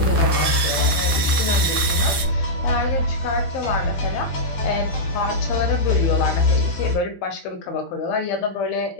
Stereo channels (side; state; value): right; late; 12 ms